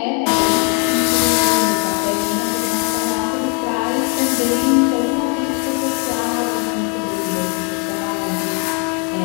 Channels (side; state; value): right; quieter; 37.2 dB